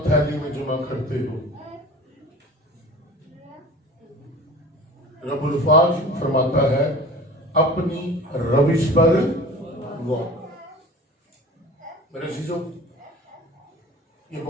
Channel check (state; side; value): normal; both; correlation 0.41